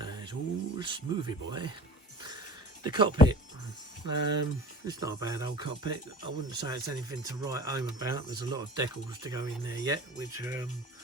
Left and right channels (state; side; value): normal; both; correlation 0.41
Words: it's all smoothy, boy. The cockpit, it's not a bad old cockpit. I wouldn't say it's anything to write home about. There's a lot of decals to go in there yet, which